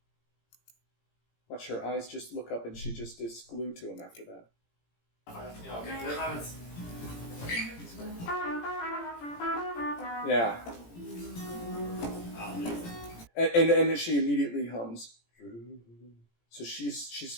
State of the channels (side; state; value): right; late; 17 ms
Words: Watch her eyes just look up, and she just is glued to him after that. Ja, ok. Det er nærmest. Yeah. Ja, det er riktig. And then she immediately hums. So